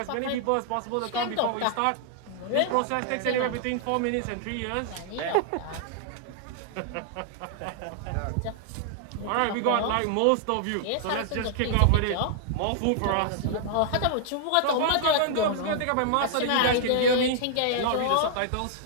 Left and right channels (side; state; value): both; different; correlation -0.01